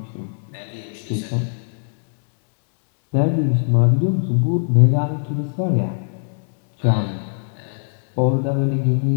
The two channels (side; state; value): right; silent; digital silence